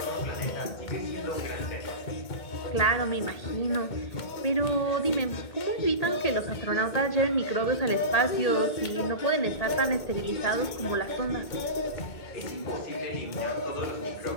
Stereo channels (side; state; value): right; late; 2.2 ms